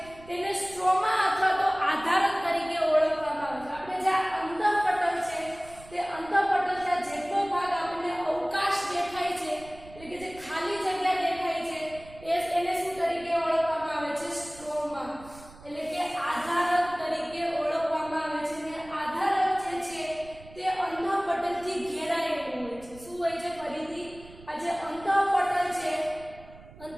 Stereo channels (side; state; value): right; noise; rumble, 20 dB below the sound